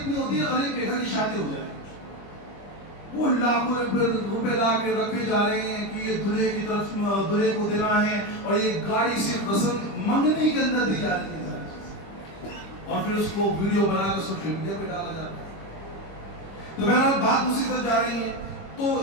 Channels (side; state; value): right; late; 25 ms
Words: ہوتی ہے غریب بے گھر کی شادی ہو جائے وہ لاکھوں روپے لا کے رکھے جا رہے ہیں کہ یہ دلہے کی طرف دلہے کو دینا ہے اور یہ گاڑی سے رسم منگنی کے اندر دی جا رہی ہے اور پھر اس کو ویڈیو بنا کر سوشل میڈیا پہ ڈالا جاتا ہے. تو بہرحال بات دوسری طرف جا رہی ہے. تو